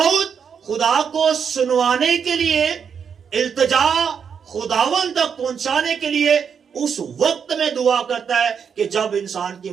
खुदा को सुनवाने के लिए, इल्तिजा खुदावन तक पहुंचाने के लिए उस वक्त में दुआ करता है कि जब इंसान की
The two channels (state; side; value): quieter; left; 7.0 dB